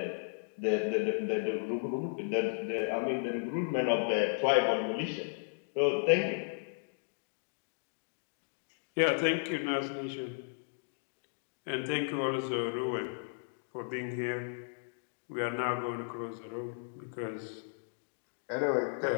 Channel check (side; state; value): right; silent; digital silence